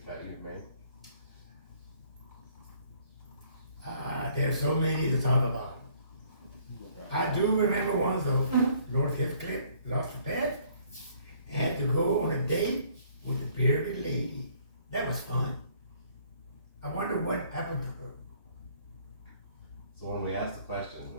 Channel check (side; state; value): both; inverted; correlation -0.61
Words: bet you've made? There's so many to talk about. I do remember one though. Lord Heathcliff lost a bet and had to go on a date with a bearded lady. That was fun. I wonder what happened to her. So when we ask the questions,